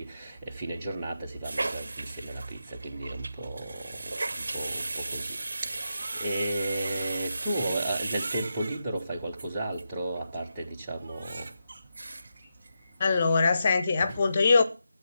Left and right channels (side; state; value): both; inverted; correlation -0.87